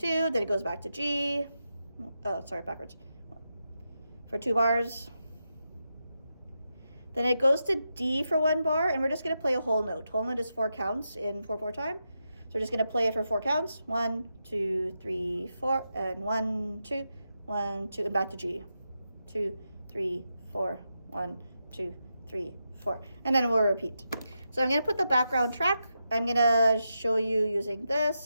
Then it goes back to G. Oh, sorry, backwards. For 2 bars. Then it goes to D for 1 bar, and we're just going to play a whole note. Whole note is 4 counts in 4/4 time. So we're just going to play it for 4 counts. 1, 2, 3, 4, and 1, 2, 1, 2, and back to G. 2, 3, 4, 1, 2, 3, 4. And then we'll repeat. So I'm going to put the background track. I'm going to show you using this,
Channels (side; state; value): both; inverted; correlation -0.87